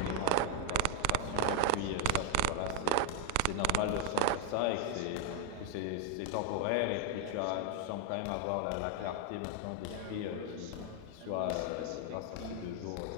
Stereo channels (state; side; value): different; both; correlation 0.00